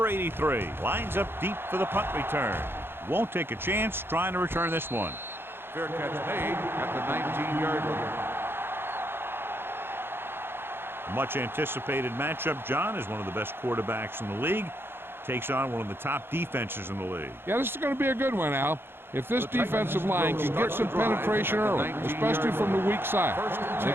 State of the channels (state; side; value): late; left; 0.11 ms